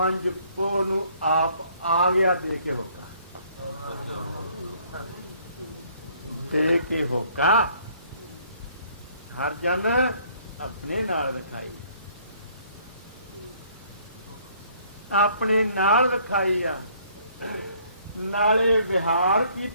ਪੋਹ ਨੂੰ ਆਪ ਆ ਗਿਆ ਦੇ ਕੇ ਹੋਕਾ, ਦੇ ਕੇ ਹੋਕਾ ਹਰ ਜਨ ਆਪਣੇ ਨਾਲ ਰਖਾਈ, ਆਪਣੇ ਨਾਲ ਰਖਾਈ ਆ। ਨਾਲੇ ਵਿਹਾਰ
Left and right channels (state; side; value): inverted; both; correlation -0.62